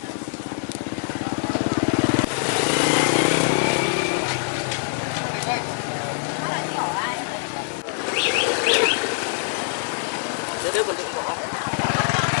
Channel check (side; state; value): right; silent; 63 dB below the other